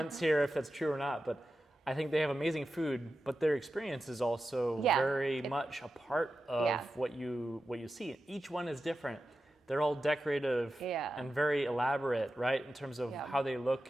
here if that's true or not, but I think they have amazing food, but their experience is also very much a part of what you see. Each one is different. They're all decorative and very elaborate, right, in terms of how they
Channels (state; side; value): normal; both; correlation 0.91